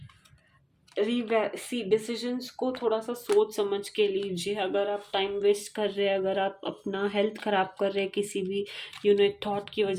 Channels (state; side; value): identical; both; correlation 1.00